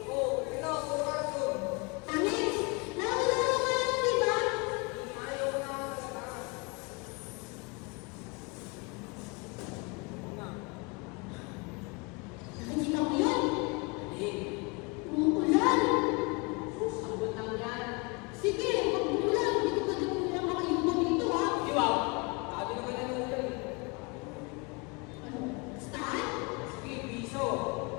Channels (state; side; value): quieter; right; 29.7 dB